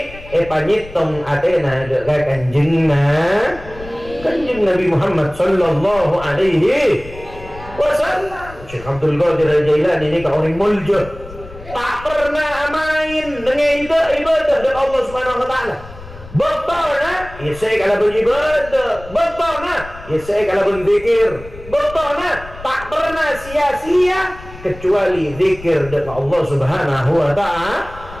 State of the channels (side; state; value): left; noise; rumble, 16 dB below the sound